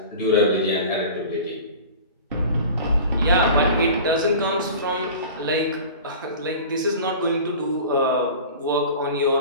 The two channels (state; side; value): inverted; both; correlation -0.38